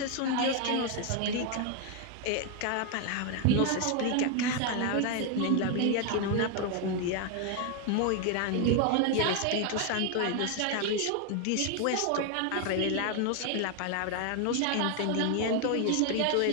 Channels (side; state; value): both; different; correlation 0.01